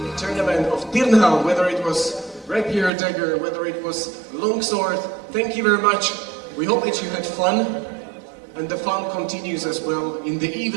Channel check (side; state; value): left; drops out; at 2.9 s